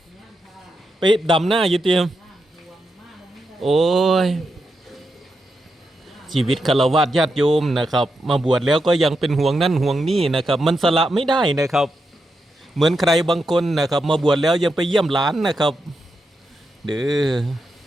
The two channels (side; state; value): both; normal; correlation 0.85